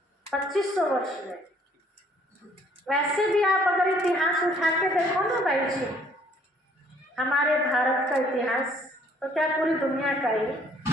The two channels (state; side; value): normal; both; correlation 0.61